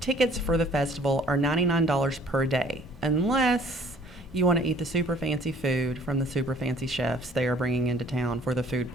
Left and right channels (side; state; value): both; normal; correlation 0.55